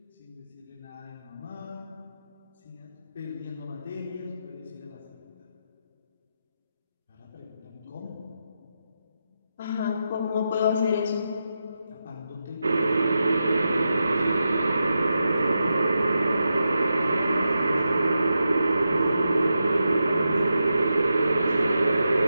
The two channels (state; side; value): inverted; both; correlation -0.88